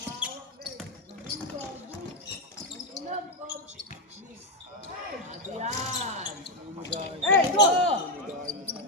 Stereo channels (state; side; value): normal; both; correlation 0.06